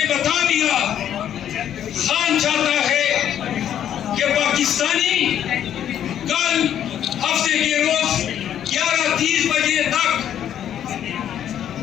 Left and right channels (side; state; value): right; quieter; 10.1 dB